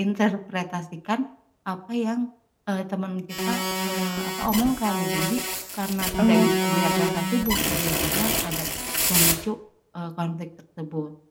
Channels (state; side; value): identical; both; correlation 1.00